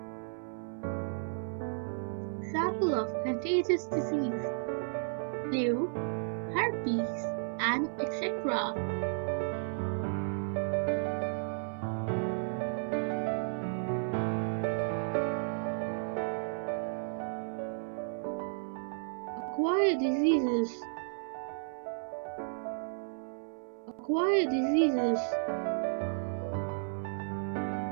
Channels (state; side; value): silent; left; 55 dB below the other